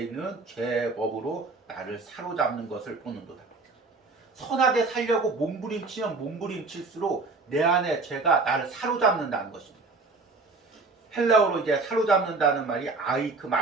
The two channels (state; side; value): quieter; left; 3.8 dB